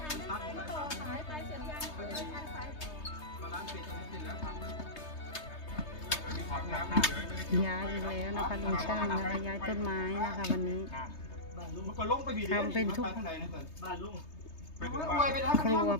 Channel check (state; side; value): late; right; 3.3 ms